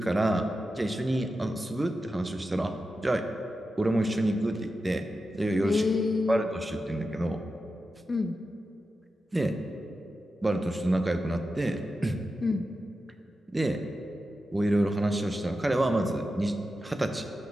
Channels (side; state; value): both; normal; correlation 0.91